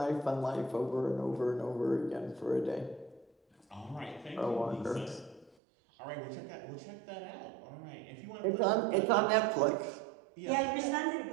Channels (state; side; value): drops out; left; at 5.6 s